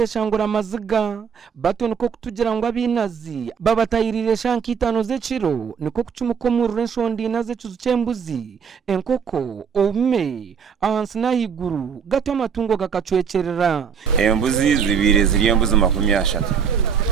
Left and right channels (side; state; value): left; quieter; 6.8 dB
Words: amaziga bato niko kutugira ngo abinazi babatayirire shankitano z'eciro niko kucumukomurura enshondi naze cyembuzi enkoko ome ahansi nahiguru gato amatungo gakacwecerera embuzi zibiri ziri embuzi 30